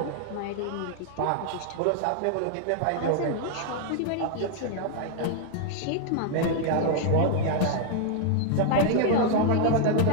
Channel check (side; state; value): both; different; correlation 0.00